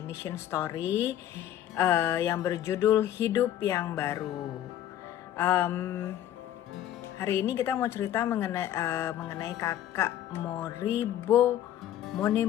Mission Story yang berjudul Hidup yang Baru. Hari ini kita mau cerita mengenai kakak Moribo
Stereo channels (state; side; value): quieter; right; 11.7 dB